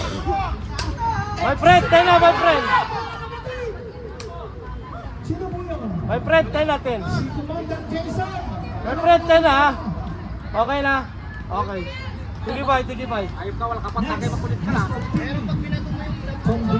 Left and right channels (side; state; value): both; identical; correlation 1.00